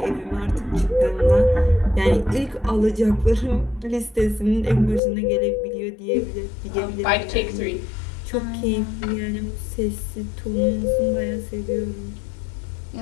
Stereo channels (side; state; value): right; drops out; at 5.0 s